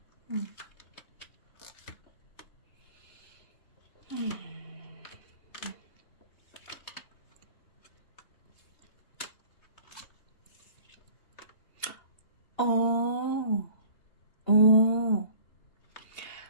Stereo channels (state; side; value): late; right; 2.8 ms